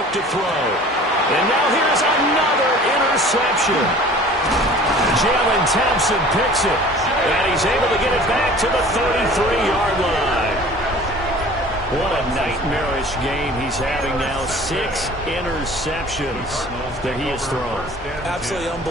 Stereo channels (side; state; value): both; normal; correlation 0.46